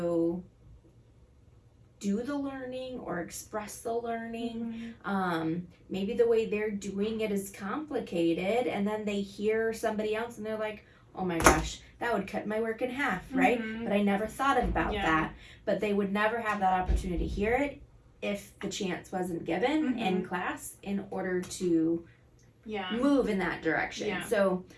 do the learning or express the learning. Maybe the way they're doing it is complicated, and then they hear somebody else and they're like, oh my gosh, that would cut my work in half, right? But I never thought about that. But they would never have that opportunity to hear it if the chance wasn't given in class in order to move in that direction. So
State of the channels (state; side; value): identical; both; correlation 1.00